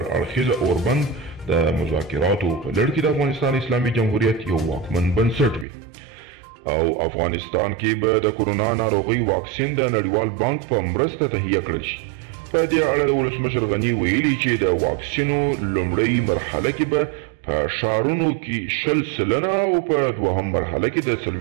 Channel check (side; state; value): left; drops out; at 5.7 s